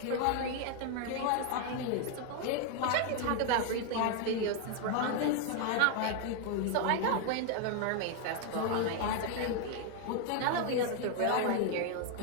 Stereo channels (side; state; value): both; different; correlation 0.01